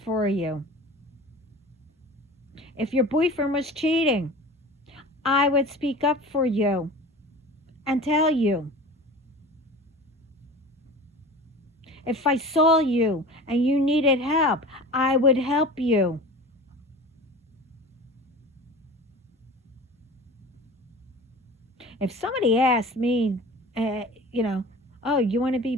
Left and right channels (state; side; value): normal; both; correlation 0.37